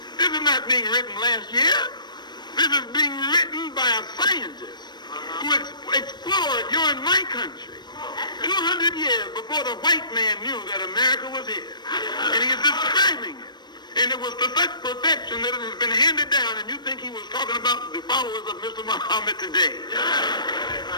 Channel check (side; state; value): right; late; 0.21 ms